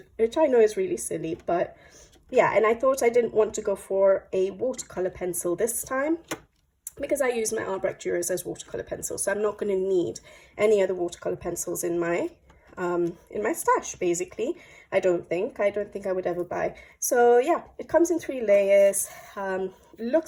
I know is really silly, but yeah. And I thought I didn't want to go for a watercolor pencil this time because I use my Albrecht Dürers as watercolor pencils, so I'm not going to need any other watercolor pencils in my stash. Basically, I don't think I would ever buy. So yeah, it comes in 3 layers.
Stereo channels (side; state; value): both; identical; correlation 1.00